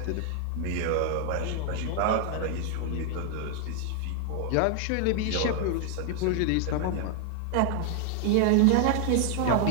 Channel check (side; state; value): both; different; correlation 0.00